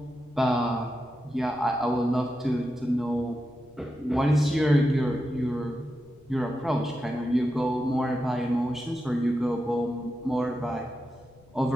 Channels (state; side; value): noise; left; rumble, 28 dB below the sound